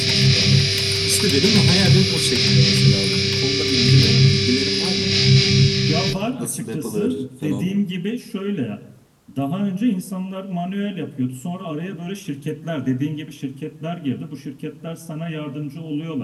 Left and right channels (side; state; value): both; identical; correlation 1.00